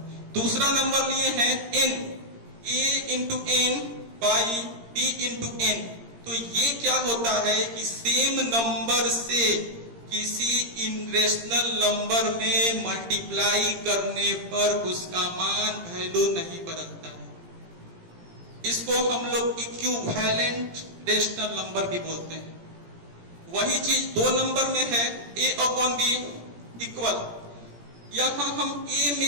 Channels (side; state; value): left; late; 17 ms